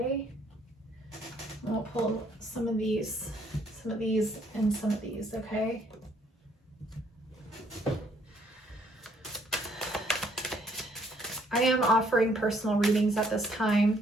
We'll pull some of these, and some of these, okay? I am offering personal readings at this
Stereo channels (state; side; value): normal; both; correlation 0.66